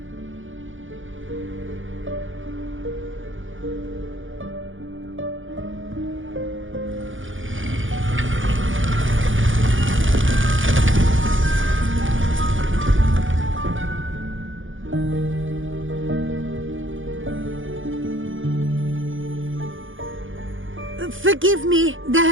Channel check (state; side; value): late; left; 0.57 ms